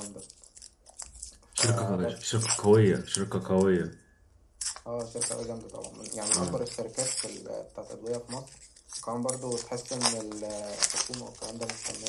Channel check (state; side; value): identical; both; correlation 1.00